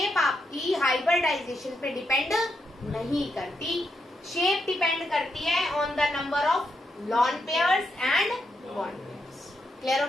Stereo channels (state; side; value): normal; both; correlation 0.82